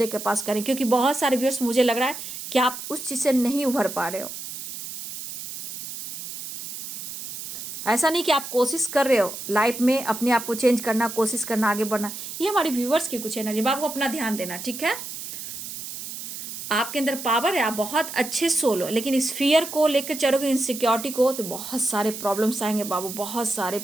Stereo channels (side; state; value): right; noise; hiss, 9 dB below the sound